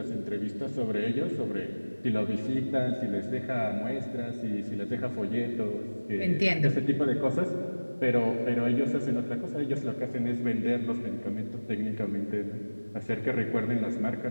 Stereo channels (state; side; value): inverted; both; correlation -1.00